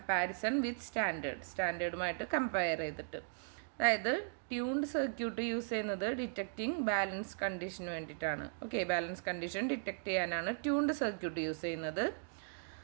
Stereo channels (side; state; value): left; silent; digital silence